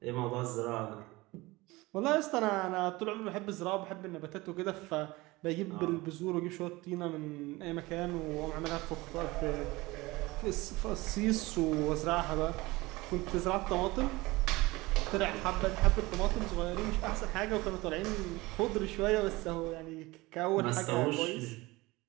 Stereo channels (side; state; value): left; quieter; 21.3 dB